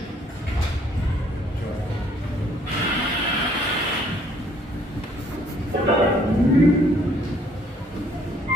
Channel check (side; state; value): both; normal; correlation 0.63